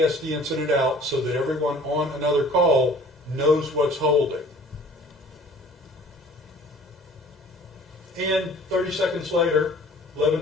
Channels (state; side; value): normal; both; correlation 0.50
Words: the incident out so that everyone on another call knows what's holding. And 30 seconds later,